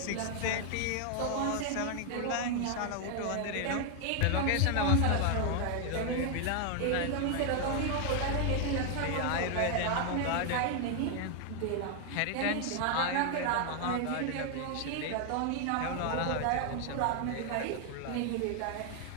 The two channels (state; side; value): different; both; correlation 0.00